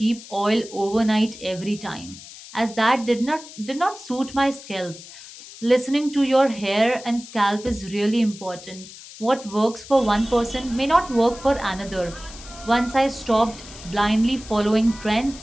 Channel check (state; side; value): noise; left; hiss, 16 dB below the sound